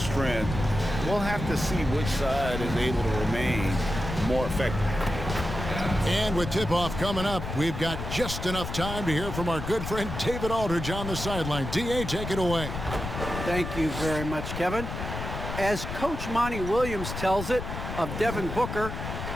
we'll have to see which side is able to remain more effective. And with tip-off coming up, we've got just enough time to hear from our good friend David Aldridge on the sideline. D.A., take it away. Thank you very much, Kevin. As Coach Monty Williams tells it of Devin Booker,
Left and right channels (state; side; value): noise; left; rumble, 6 dB below the sound